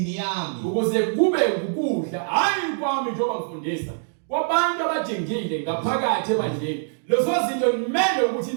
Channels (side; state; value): left; silent; digital silence